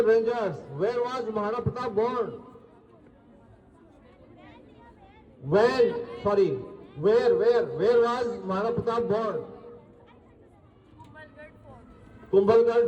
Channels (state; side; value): identical; both; correlation 1.00